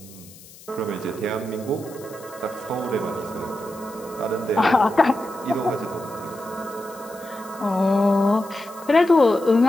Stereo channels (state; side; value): noise; left; hiss, 21 dB below the sound